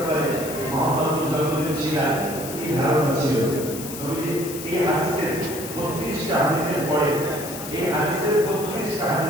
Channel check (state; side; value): noise; left; hiss, 10 dB below the sound